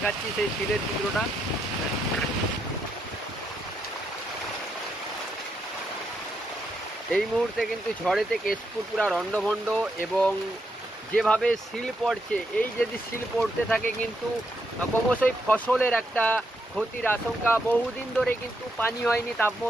সেই শিলের চিত্রটা। এই মুহূর্তে কিন্তু ঝড়েতে কেশপুর পুরা রণ্ডভণ্ড, এবং যেভাবে শিল পড়ছে, এই যদি শিল পড়তে থাকে কিন্তু ক্রমশই ফসলের একটা ক্ষতির আশঙ্কা। বহুদিন ধরে কিন্তু পানি হয়নি,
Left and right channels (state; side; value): normal; both; correlation 0.80